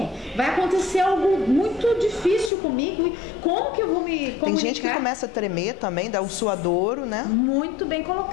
Vai acontecer algo muito difícil comigo. E como que eu vou me comunicar? Tem gente que começa a tremer também, dá um suadouro, né? Muito bem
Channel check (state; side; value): drops out; right; at 2.5 s